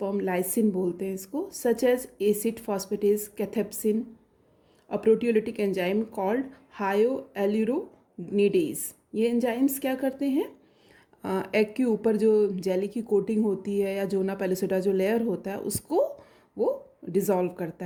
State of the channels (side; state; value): both; identical; correlation 1.00